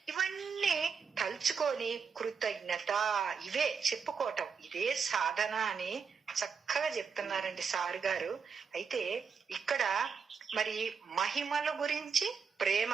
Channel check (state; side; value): quieter; left; 5.9 dB